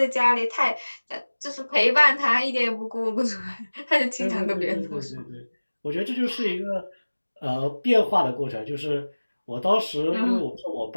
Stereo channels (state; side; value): inverted; both; correlation -1.00